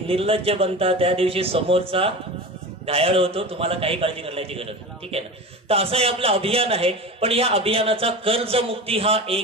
बनता त्या दिवशी समोरचा घायाळ होतो, तुम्हाला काही काळजी करण्याची गरज नाही. ठीक आहे ना. तर असं हे आपलं अभियान आहे. पण या अभियानाचा कर्जमुक्ती हा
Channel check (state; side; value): normal; both; correlation 0.29